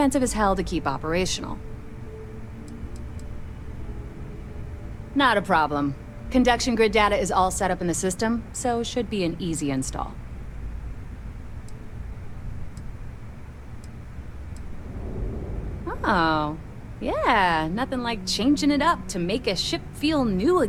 as hell to keep operational. Not a problem. Conduction grid data is all set up in the system, so should be an easy install. Oh, yeah, nothing like changing it up to make a ship feel new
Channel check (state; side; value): identical; both; correlation 1.00